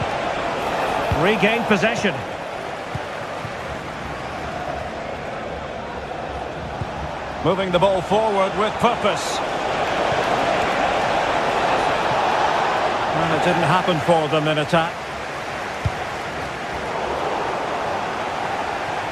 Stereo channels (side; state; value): both; identical; correlation 1.00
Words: Regained possession. Moving the ball forward with purpose. And it didn't happen for them in attack.